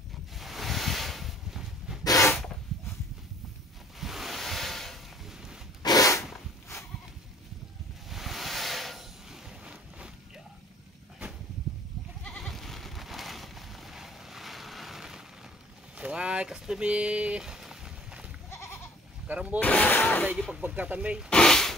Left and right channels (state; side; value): normal; both; correlation 0.55